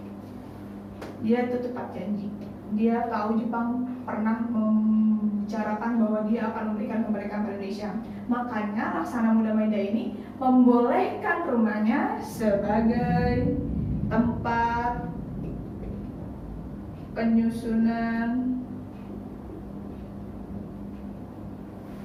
Dia itu tepat janji. Dia tahu Jepang pernah membicarakan bahwa dia akan memberikan kemerdekaan pada Indonesia. Makanya Laksana Muda Maeda ini membolehkan rumahnya sebagai tempat penyusunan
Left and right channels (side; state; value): both; identical; correlation 1.00